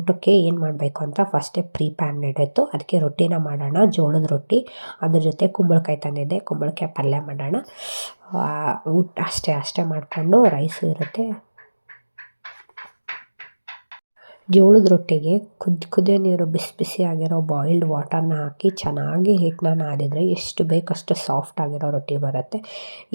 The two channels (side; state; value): both; inverted; correlation -1.00